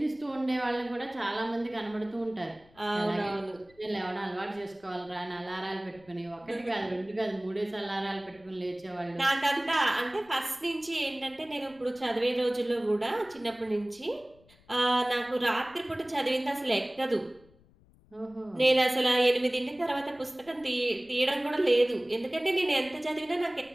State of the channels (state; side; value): noise; left; rumble, 29 dB below the sound